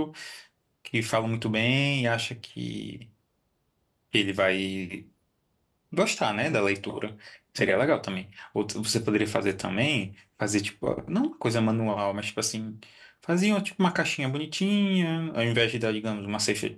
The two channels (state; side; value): identical; both; correlation 1.00